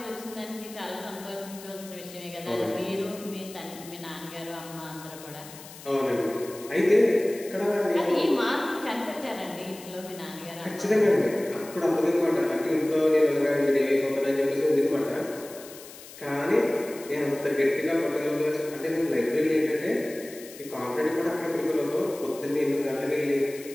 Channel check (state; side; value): noise; left; hiss, 17 dB below the sound